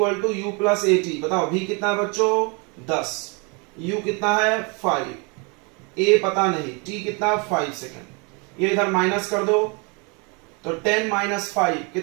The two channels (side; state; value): left; quieter; 32.0 dB